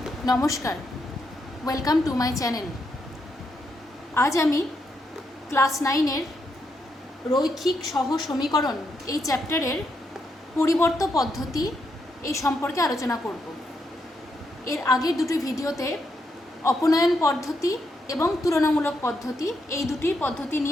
নমস্কার, welcome to my channel. আজ আমি ক্লাস 9-এর রৈখিক সহ সমীকরণ এই চ্যাপ্টারের পরিবর্ত পদ্ধতি এই সম্পর্কে আলোচনা করব। এর আগের দুটি ভিডিওতে অপনয়ন পদ্ধতি এবং তুলনামূলক পদ্ধতি এই দুটি পদ্ধতি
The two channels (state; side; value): normal; both; correlation 0.80